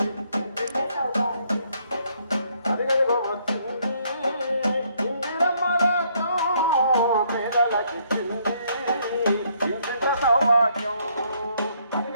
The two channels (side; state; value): both; inverted; correlation -0.69